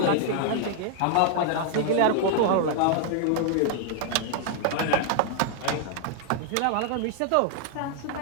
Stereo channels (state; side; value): different; both; correlation 0.00